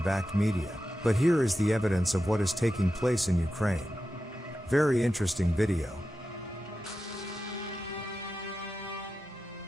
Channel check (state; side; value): normal; both; correlation 0.91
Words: media, but here is the evidence of what is taking place in Ukraine. Very interesting video.